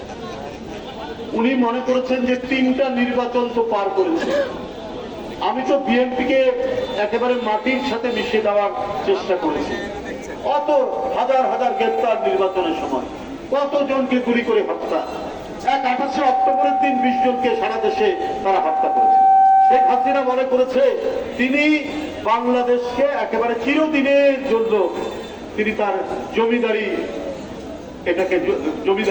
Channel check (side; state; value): both; identical; correlation 1.00